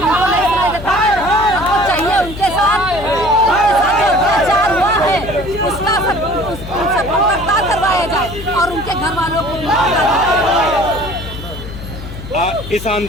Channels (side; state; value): left; noise; hum, 11 dB below the sound